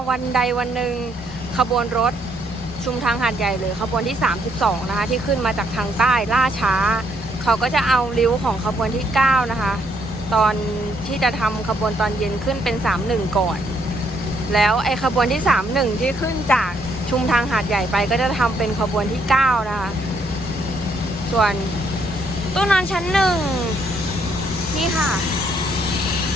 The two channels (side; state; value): both; normal; correlation 0.71